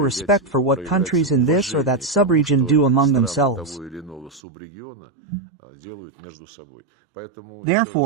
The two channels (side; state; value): left; drops out; at 4.4 s